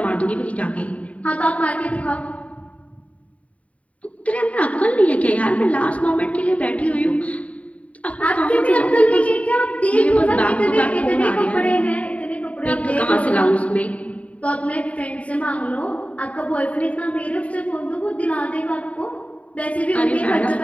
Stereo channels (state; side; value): late; right; 0.067 ms